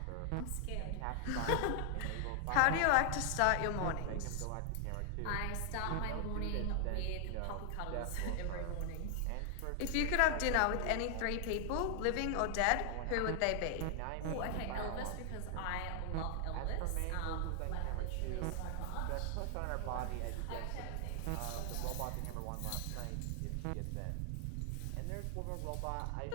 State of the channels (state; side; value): different; both; correlation 0.00